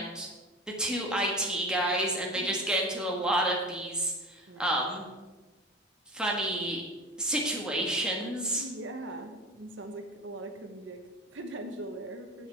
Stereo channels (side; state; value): both; normal; correlation 0.32